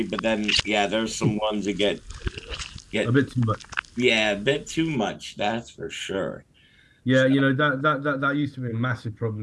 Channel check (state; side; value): identical; both; correlation 1.00